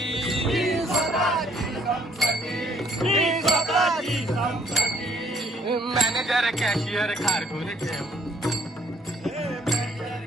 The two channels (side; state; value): both; normal; correlation 0.65